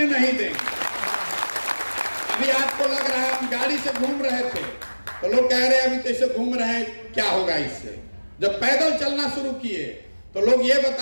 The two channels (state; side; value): inverted; both; correlation -1.00